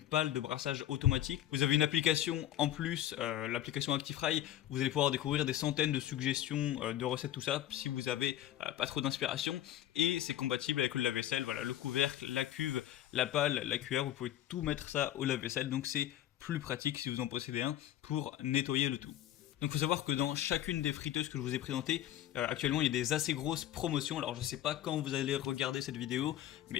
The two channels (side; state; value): right; quieter; 12.4 dB